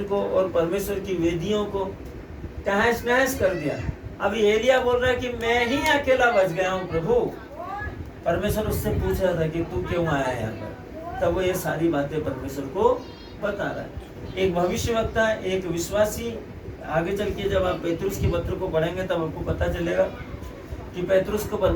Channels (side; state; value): both; identical; correlation 1.00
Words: को और परमेश्वर की वेदियों को तहस नहस कर दिया। अभी एलिया बोल रहा है कि मैं ही अकेला बच गया हूँ प्रभु। परमेश्वर उससे पूछ रहा था कि तू क्यों आया यहाँ पर? तब वो ये सारी बातें परमेश्वर को बता रहा है। एक भविष्यवक्ता, एक विश्वासी, आगे चल के जब आप पेतरुस के पत्र को पढ़ेंगे तब आपको पता चलेगा कि पेतरुस को